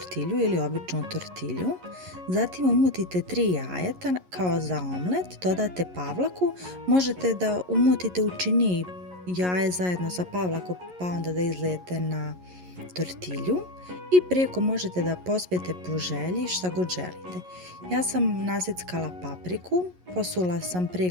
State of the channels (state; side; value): late; left; 11 ms